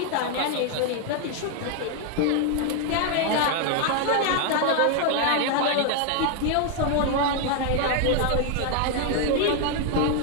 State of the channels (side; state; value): both; different; correlation 0.00